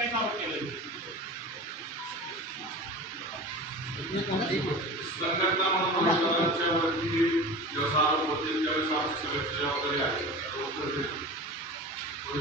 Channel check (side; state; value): both; normal; correlation 0.33